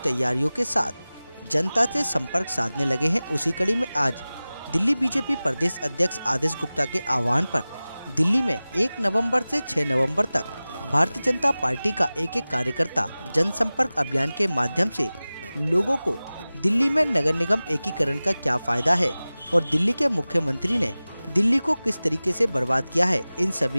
तैयारियों के साथ जनता से संपर्क साधने लगे हैं। उसी कड़ी में आज दिल्ली बीजेपी प्रदेश अध्यक्ष आदेश गुप्ता के आह्वान पर दिल्ली में 1 नवंबर से 6 नवंबर तक भारतीय जनता पार्टी का एक कार्यकर्ता जनसंपर्क अभियान के माध्यम से लोगों को दिल्ली में नगर निगम एकीकरण का क्या फायदा है और दिल्ली के मुख्यमंत्री ने दिल्ली को किस तरीके से बर्बाद किया है, इन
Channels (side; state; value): both; inverted; correlation -0.98